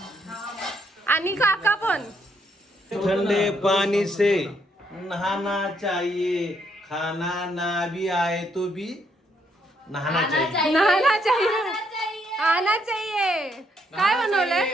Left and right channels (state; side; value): normal; both; correlation 0.73